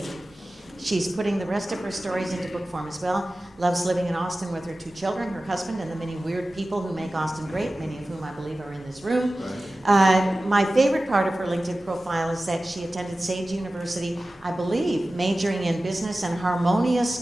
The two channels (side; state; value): both; normal; correlation 0.96